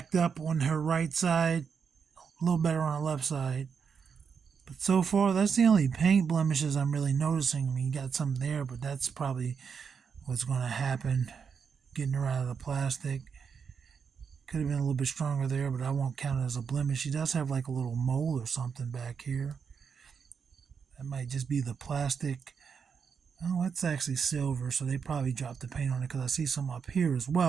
up on her right side. A little better on the left side. But so far, that's the only paint blemishes I'm really noticing. I mean, you got some there, but that's probably what's going to happen. Getting her out of the plastic. Could have been a little bit stronger there, but I won't count it as a blemish. She does have like a little mole or something back here. That might just be the plastic. Oh, it's actually silver, so they probably dropped the paint on it because I see some up here as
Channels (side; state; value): left; quieter; 6.3 dB